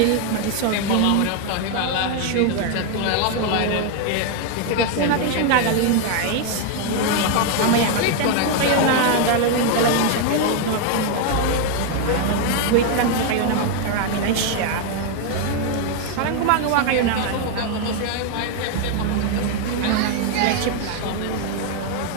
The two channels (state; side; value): different; both; correlation 0.01